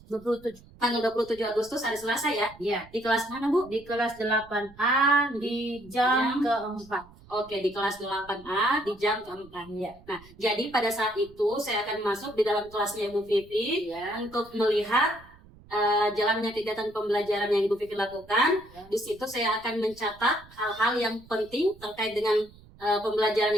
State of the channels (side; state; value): right; noise; rumble, 23 dB below the sound